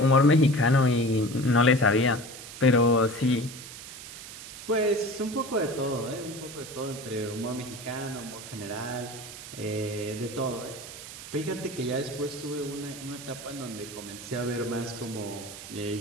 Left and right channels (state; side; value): noise; right; hiss, 13 dB below the sound